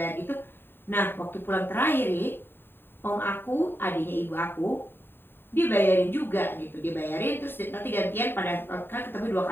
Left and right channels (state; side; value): late; right; 0.10 ms